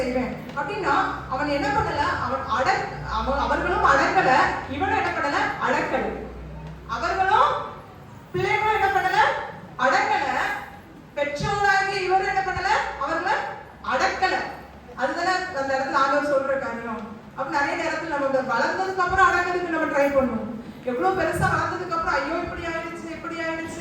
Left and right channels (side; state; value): both; identical; correlation 1.00